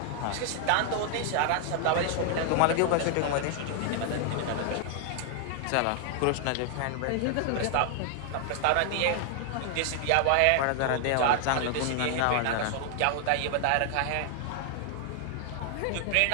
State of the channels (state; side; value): different; both; correlation 0.00